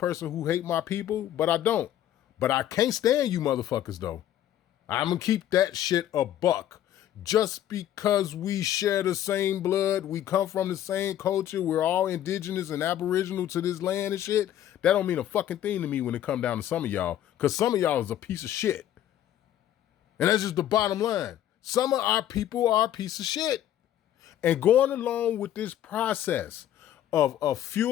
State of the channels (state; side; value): quieter; right; 11.7 dB